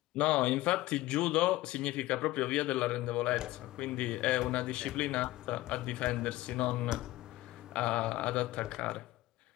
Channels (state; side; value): quieter; right; 17.5 dB